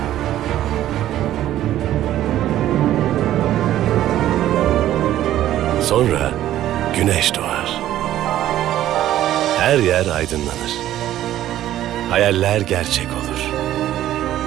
Sonra güneş doğar. Her yer aydınlanır. Hayaller gerçek olur.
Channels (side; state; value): left; quieter; 12.9 dB